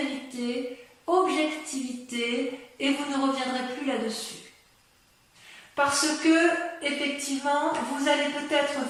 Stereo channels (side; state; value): both; identical; correlation 1.00